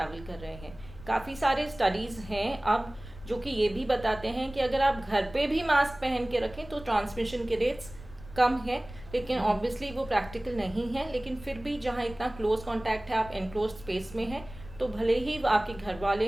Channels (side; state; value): left; noise; rumble, 17 dB below the sound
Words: कर रहे हैं। काफ़ी सारे स्टडीज़ हैं अब जो कि ये भी बताते हैं कि अगर आप घर पे भी मास्क पहन के रखें तो ट्रांसमिशन के रेट्स कम है। लेकिन ऑब्वियसली वो प्रैक्टिकल नहीं है, लेकिन फिर भी जहाँ इतना क्लोज कॉन्टैक्ट है, आप एनक्लोज स्पेस में हैं, तो भले ही आपके घर